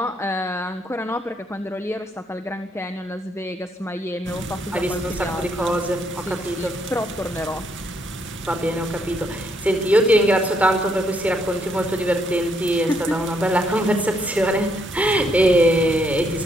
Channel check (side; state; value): both; normal; correlation 0.73